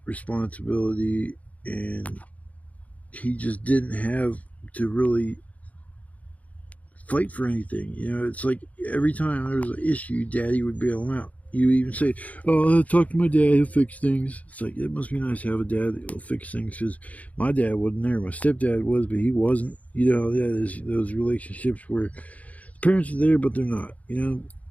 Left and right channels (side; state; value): right; late; 0.070 ms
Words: responsibility, and he just didn't have to really fight for anything. You know, it's like every time there was an issue, Daddy would bail him out. You even say, "Oh, I'll talk to my dad. He'll fix things." It's like, it must be nice to have a dad that'll fix things, because my dad wasn't there. My stepdad was, but he wasn't. You know, yeah, there's those relationships where the parents are there, but they're not. You know,